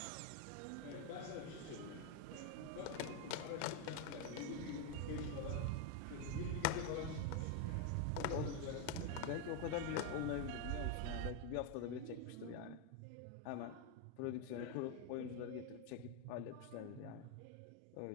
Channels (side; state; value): both; different; correlation 0.01